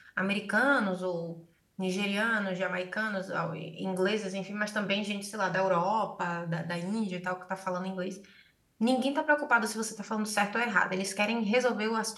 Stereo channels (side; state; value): both; identical; correlation 1.00